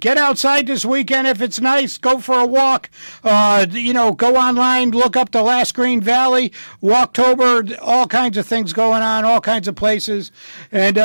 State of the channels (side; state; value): both; inverted; correlation -1.00